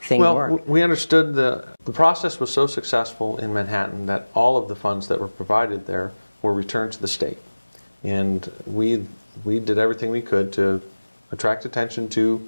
thing work? Well, we understood the process was so successful in Manhattan that all of the funds that were provided there were returned to the state. And we did everything we could to attract attention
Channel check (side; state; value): both; inverted; correlation -1.00